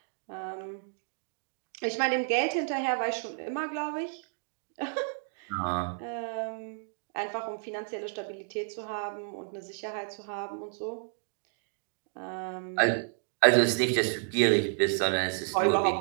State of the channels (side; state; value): left; silent; digital silence